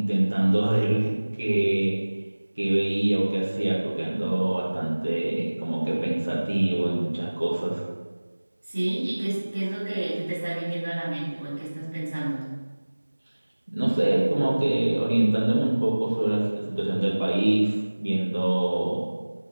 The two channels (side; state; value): both; inverted; correlation -1.00